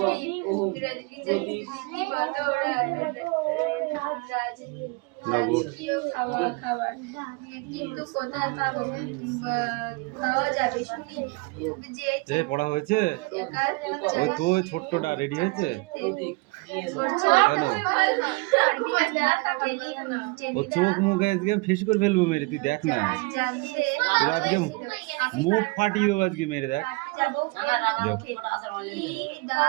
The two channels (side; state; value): left; quieter; 27.3 dB